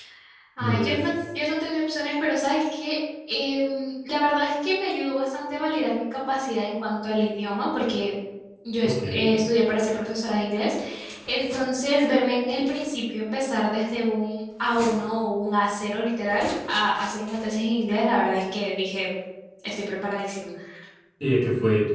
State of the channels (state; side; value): identical; both; correlation 1.00